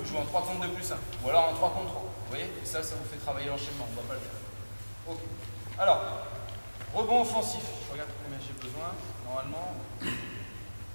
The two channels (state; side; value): inverted; both; correlation -1.00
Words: jouez en 3 contre 2 plus 1, ou alors en 3 contre 3. Vous voyez? Et ça vous fait travailler l'enchaînement, on ne va pas le faire. Ok. Alors, rebond offensif. Je regarde combien j'ai besoin, normalement.